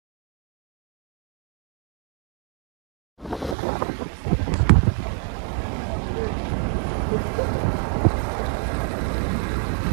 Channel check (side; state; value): left; drops out; at 3.6 s